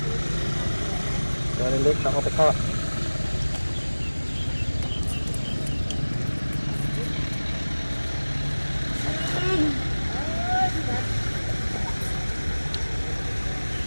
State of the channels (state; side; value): inverted; both; correlation -1.00